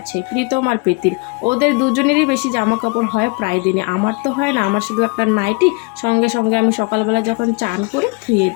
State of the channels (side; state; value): right; quieter; 30.3 dB